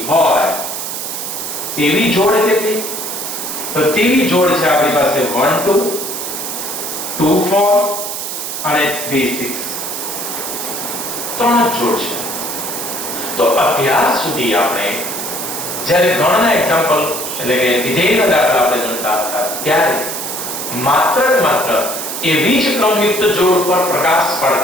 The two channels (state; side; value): noise; right; hiss, 5 dB below the sound